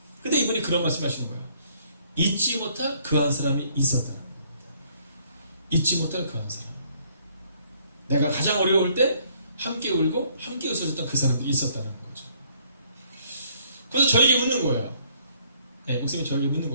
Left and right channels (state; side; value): inverted; both; correlation -0.64